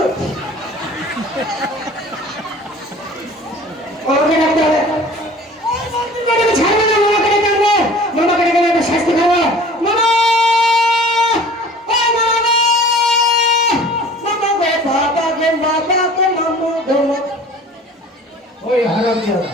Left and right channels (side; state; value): both; normal; correlation 0.46